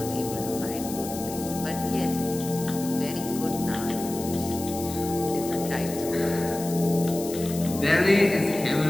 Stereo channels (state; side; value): noise; left; hiss, 11 dB below the sound